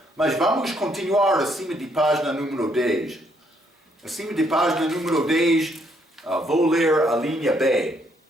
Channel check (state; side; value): normal; both; correlation 0.71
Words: Mas vamos continuar acima de página número 10. Acima de página número 10, vou ler a linha B.